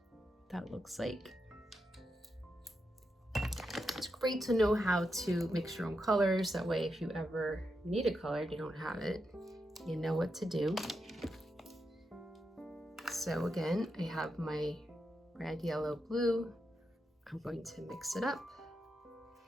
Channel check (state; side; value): normal; both; correlation 0.86